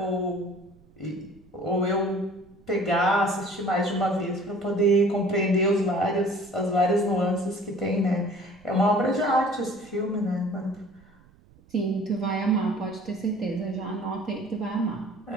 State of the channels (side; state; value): right; noise; rumble, 27 dB below the sound